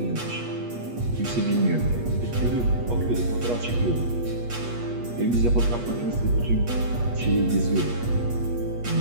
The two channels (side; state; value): left; late; 8.3 ms